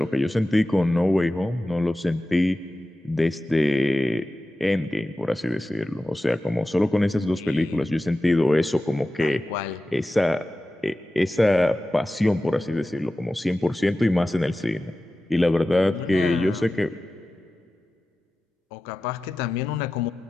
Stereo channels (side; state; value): both; normal; correlation 0.94